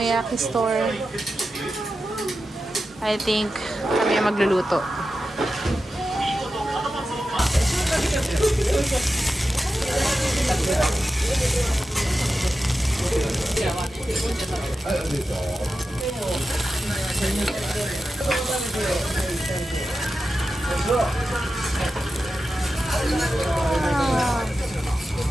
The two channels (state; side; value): normal; both; correlation 0.91